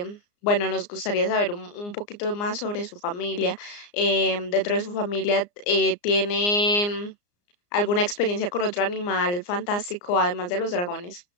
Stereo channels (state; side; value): late; right; 34 ms